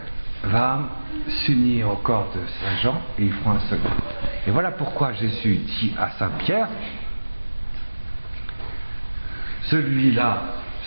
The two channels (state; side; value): inverted; both; correlation -1.00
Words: va s'unir au corps de Saint Jean et ils feront un seul corps. Et voilà pourquoi Jésus dit à Saint Pierre, celui-là,